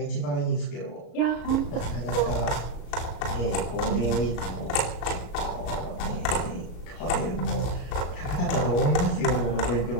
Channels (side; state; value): right; late; 34 ms